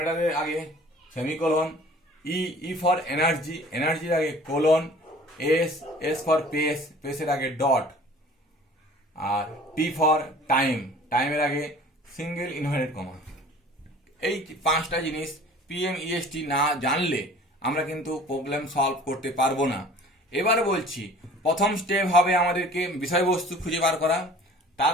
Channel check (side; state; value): both; normal; correlation 0.47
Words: আগে সেমিকোলন। ই ফর এনার্জি, এনার্জির আগে কোলন। এস ফর পেসের আগে ডট। আর টি ফর টাইমের আগে সিঙ্গেল ইনভার্টেড কমা। এই 5টা জিনিস পিএমইএসটি না জানলে আমরা কিন্তু প্রবলেম সলভ করতে পারবো না। এবার বলছি, প্রথম স্টেপ হবে আমাদেরকে বিষয়বস্তু খুঁজে বার করা।